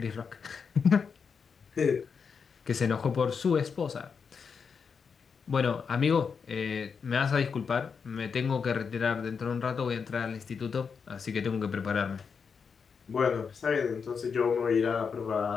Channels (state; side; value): quieter; right; 6.0 dB